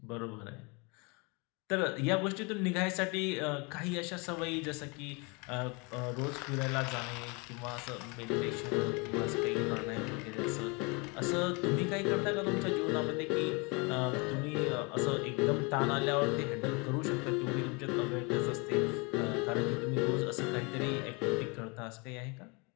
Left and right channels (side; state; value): right; quieter; 29.8 dB